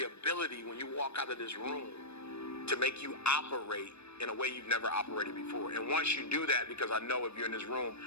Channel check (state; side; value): late; right; 0.80 ms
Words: ability when you walk out of this room to make you operate in a way you've never operated before. And once you do that, because I know if you're in this room,